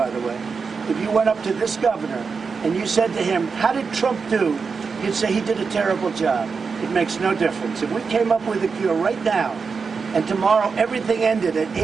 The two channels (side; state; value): left; quieter; 5.2 dB